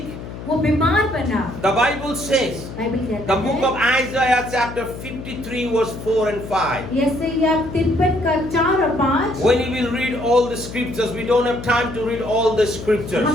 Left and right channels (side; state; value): left; noise; hum, 11 dB below the sound